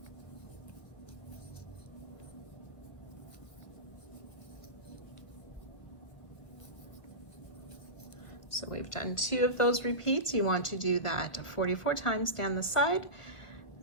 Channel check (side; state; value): right; late; 1.1 ms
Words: So we've done 2 of those repeats. You want to do that 44 times down the side,